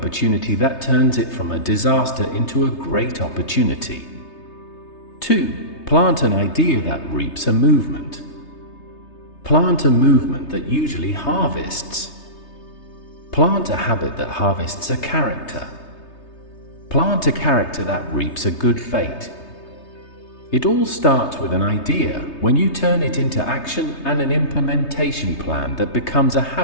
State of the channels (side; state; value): right; late; 3.3 ms